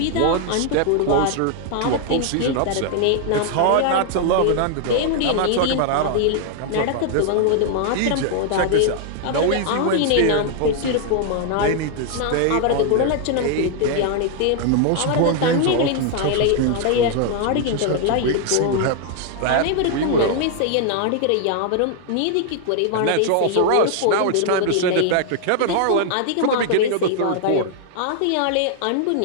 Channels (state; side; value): different; both; correlation 0.00